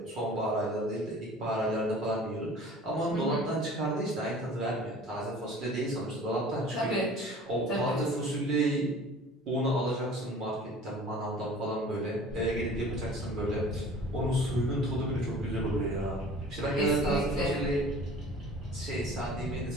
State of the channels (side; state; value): both; normal; correlation 0.46